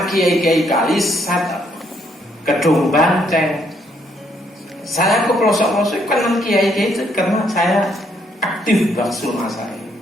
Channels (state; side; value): normal; both; correlation 0.71